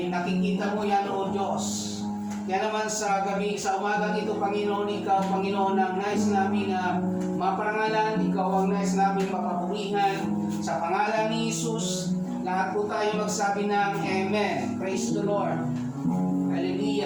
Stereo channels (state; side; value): identical; both; correlation 1.00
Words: nakikita mo yan, O Diyos. Kaya naman sa gabi, sa umagang ito, Panginoon, ikaw, Panginoon, ang nais namin na maparangalan. Ikaw ang nais namin mapapurihan. Sa pangalan ni Jesus, lahat po tayo magsabi ng Amen. Praise the Lord.